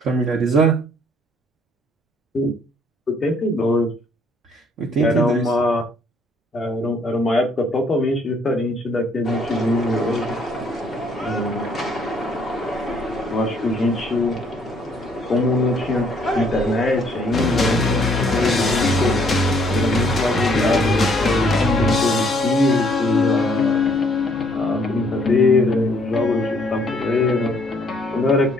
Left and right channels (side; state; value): both; normal; correlation 0.64